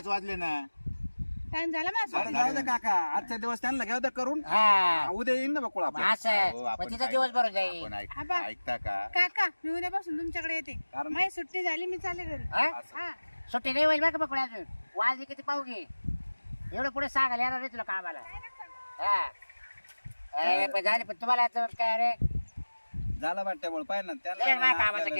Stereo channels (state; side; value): inverted; both; correlation -1.00